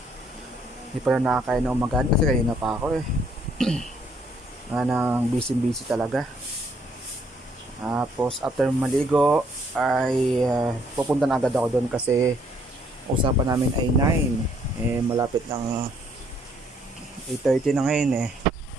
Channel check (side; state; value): both; normal; correlation 0.67